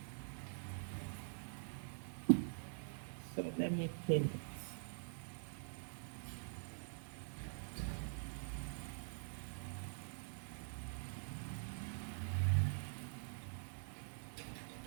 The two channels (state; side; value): silent; left; digital silence